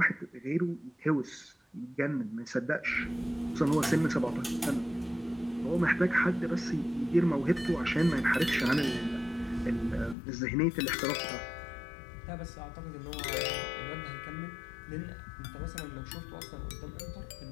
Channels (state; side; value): drops out; right; at 10.2 s